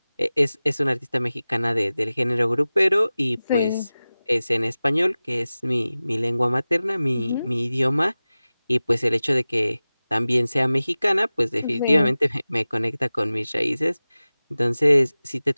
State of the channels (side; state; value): both; inverted; correlation -0.97